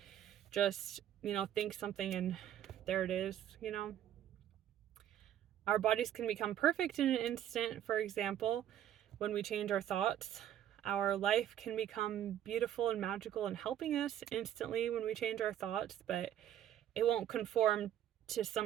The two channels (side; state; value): left; quieter; 11.1 dB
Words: just, think something and there it is. Our bodies can become perfect in an instant, for example, when we change our thoughts. Our life can become beautiful and magical and helping us instantly when we change our thoughts, but it won't conform to